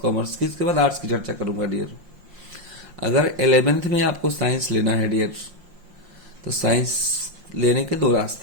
कॉमर्स की, इसके बाद आर्ट्स की चर्चा करूंगा डियर। अगर 11th में आपको साइंस लेना है डियर, तो साइंस लेने के दो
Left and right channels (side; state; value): left; late; 5.7 ms